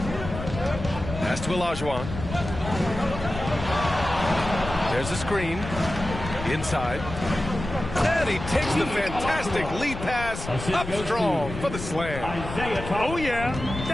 Pass to Olajuwon. There's a screen. Inside. And he takes the fantastic lead pass up strong for the slam. Oh, yeah.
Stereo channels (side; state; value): left; noise; rumble, 8 dB below the sound